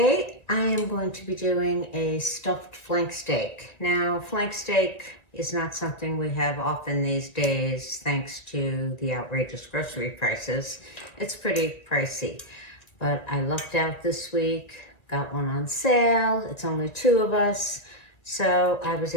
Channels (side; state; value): right; late; 1.9 ms